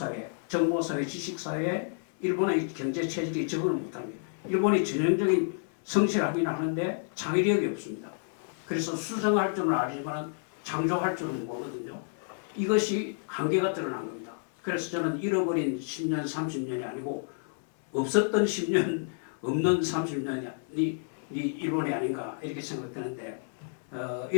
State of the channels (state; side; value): silent; right; 58 dB below the other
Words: 정보 사회, 지식 사회에 일본의 경제 체질이 적응을 못합니다. 일본이 전형적인 성실하긴 하는데 창의력이 없습니다. 그래서 수정할 줄은 알지만 창조할 줄은 모르거든요. 이것이 한계가 드러난 겁니다. 그래서 저는 잃어버린 10년, 30년이 아니고 없었던 10년, 없는 30년이 일본이 아닌가 이렇게 생각되는데